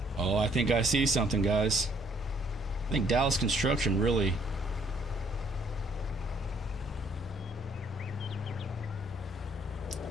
Oh, I think I see something, guys. I think Dallas Construction really...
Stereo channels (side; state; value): both; normal; correlation 0.65